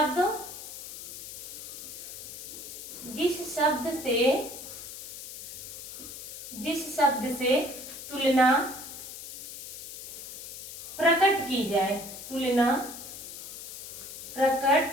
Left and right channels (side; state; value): left; noise; hiss, 10 dB below the sound